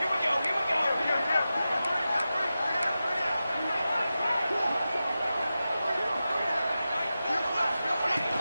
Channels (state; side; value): inverted; both; correlation -0.93